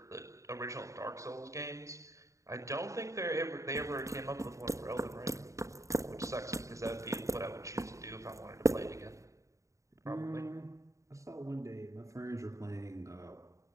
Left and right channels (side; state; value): left; late; 0.15 ms